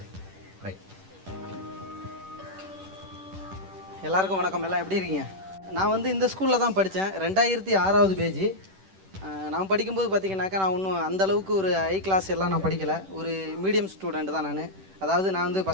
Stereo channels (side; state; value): left; late; 10 ms